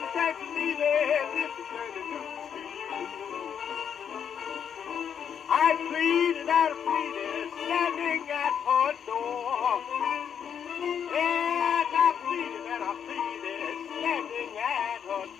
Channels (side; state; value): right; quieter; 8.0 dB